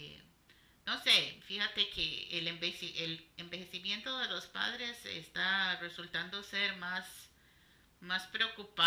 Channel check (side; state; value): both; identical; correlation 1.00